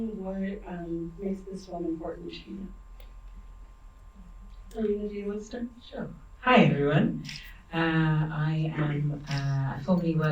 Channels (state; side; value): identical; both; correlation 1.00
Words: What makes this film important to you? Alina, do you want to start? Sure. Hi, everyone. I formerly